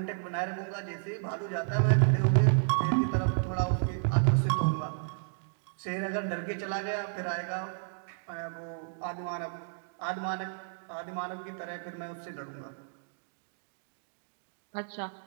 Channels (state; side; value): silent; left; digital silence